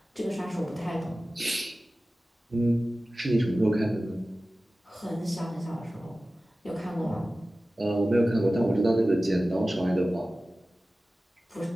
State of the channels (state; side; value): normal; both; correlation 0.96